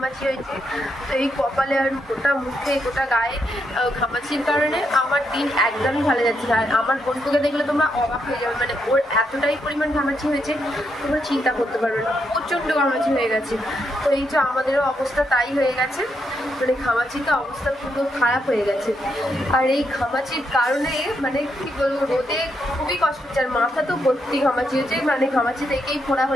হয়েছে। তো এই কপালে আর গোটা মুখে গোটা গায়ে ঘামাচির কারণে আমার দিন একদমই ভালো যাচ্ছে না। আর আমার বোনকে দেখলে তোমরা অবাক হয়ে যাবে, ওর এতটাই পরিমাণ ঘামাচি হয়েছে তোমরা চিন্তা করতে পারবে না, প্রচণ্ড ঘামাচি হয়ে গেছে। তো এই যে আমাদেরও অবস্থা তাই হয়ে গেছে, ঘামাচিতে অবস্থা পুরো খারাপ হয়ে গেছে। আর এই ঘামাচির কারণে কি বলবো, রোদে খুবই কষ্ট হচ্ছে। আর মাথা তো ভর্তি ঘামাচি হয়েছে, ঘামাচি থেকেই ফোড়া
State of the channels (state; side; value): normal; both; correlation 0.80